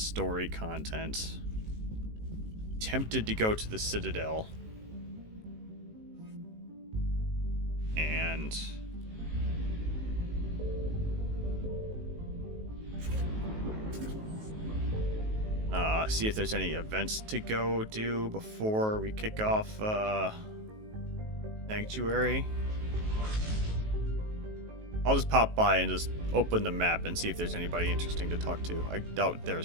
content. Tempted to go to the Citadel and see if there's any events to go do before we kick off Sanctuary. I'll just pop by and just open the map and see if there's anybody interesting to talk to. I doubt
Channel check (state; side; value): late; left; 19 ms